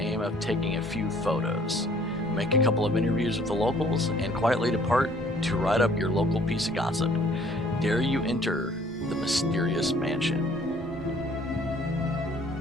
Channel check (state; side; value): normal; both; correlation 0.58